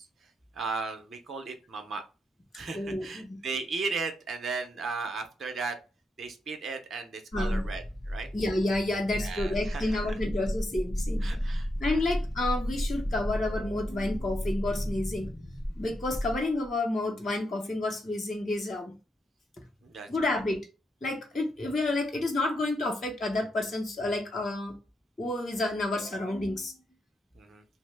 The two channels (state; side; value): normal; both; correlation 0.82